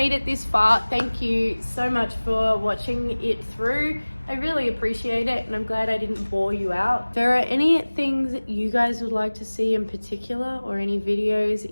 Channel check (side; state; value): both; inverted; correlation -1.00